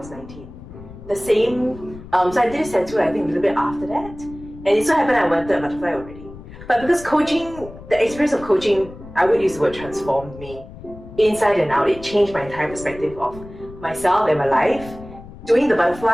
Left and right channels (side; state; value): left; noise; rumble, 16 dB below the sound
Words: 19. The same, so I did a tattoo I think a little bit after that. And it so happened I wanted a butterfly already. But because coaching, the experience of coaching, I would use the word transformed me inside and out. It changed my entire perspective of myself and my life. Doing the